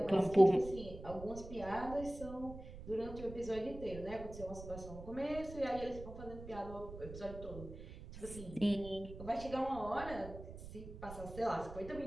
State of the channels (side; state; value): right; noise; rumble, 12 dB below the sound